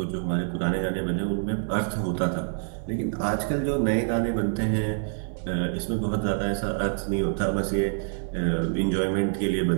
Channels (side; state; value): left; silent; digital silence